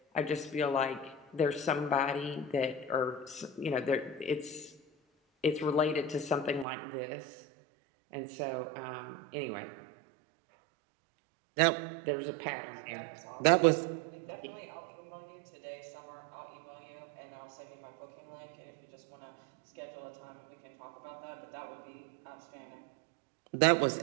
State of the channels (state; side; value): drops out; left; at 6.7 s